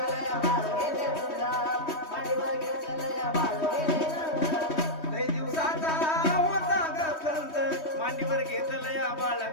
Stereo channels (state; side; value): late; right; 3.2 ms